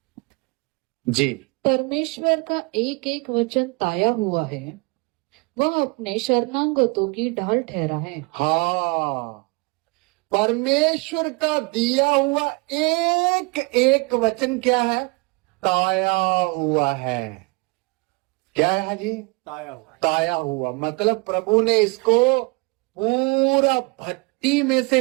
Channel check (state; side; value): quieter; left; 28.4 dB